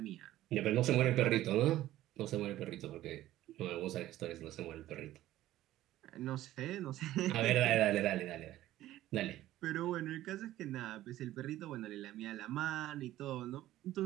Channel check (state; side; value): quieter; left; 14.5 dB